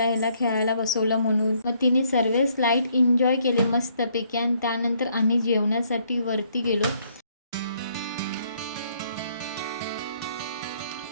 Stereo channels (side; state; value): both; inverted; correlation -0.68